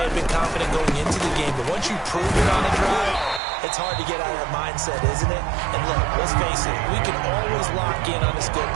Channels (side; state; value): left; drops out; at 3.4 s